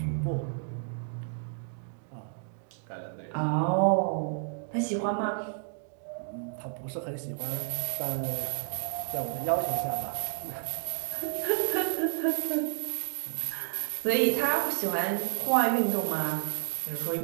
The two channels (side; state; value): left; silent; 57 dB below the other